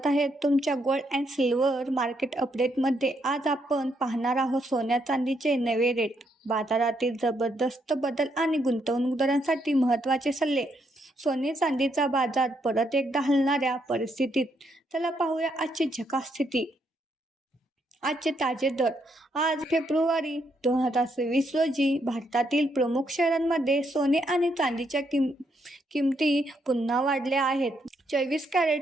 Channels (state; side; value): normal; both; correlation 0.76